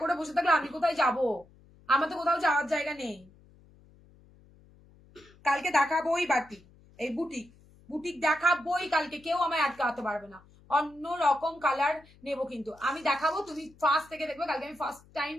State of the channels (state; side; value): noise; left; hum, 27 dB below the sound